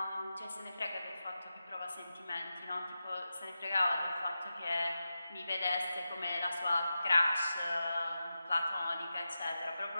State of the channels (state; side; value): inverted; both; correlation -0.92